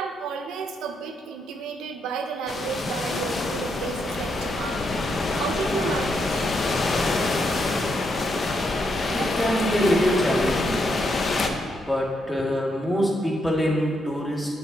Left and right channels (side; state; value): both; normal; correlation 0.79